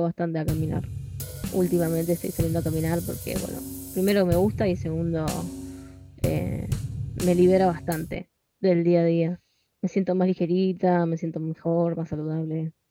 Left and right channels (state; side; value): identical; both; correlation 1.00